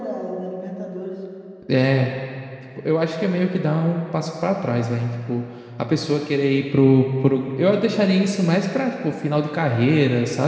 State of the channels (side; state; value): both; identical; correlation 1.00